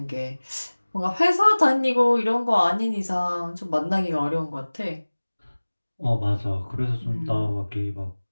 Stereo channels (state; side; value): inverted; both; correlation -1.00